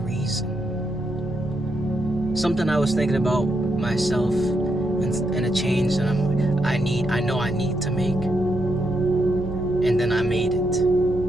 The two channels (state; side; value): normal; both; correlation 0.80